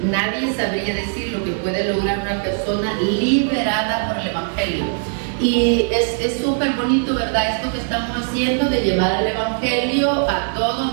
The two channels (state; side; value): silent; left; 61 dB below the other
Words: Nadie sabría decir lo que puede lograr una persona liberada por el Evangelio. Y es súper bonito, ¿verdad?, esto que estamos haciendo de llevar el Evangelio a